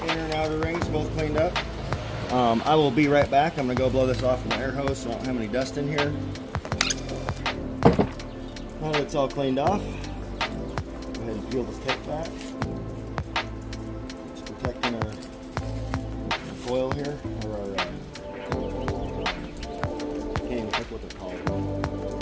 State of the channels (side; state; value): both; identical; correlation 1.00